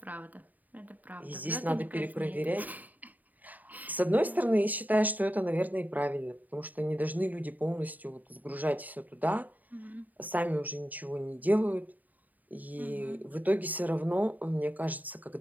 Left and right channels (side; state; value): left; late; 0.081 ms